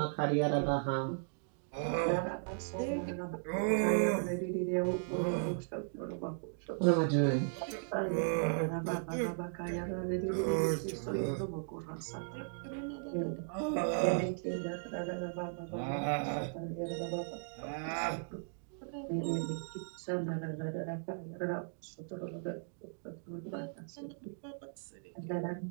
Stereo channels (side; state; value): left; silent; digital silence